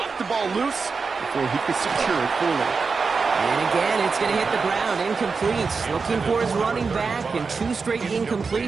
the ball loose before he could secure it fully. And again, it's going to hit the ground. Incomplete. Looking for his running back, and 2 straight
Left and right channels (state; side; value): quieter; left; 4.8 dB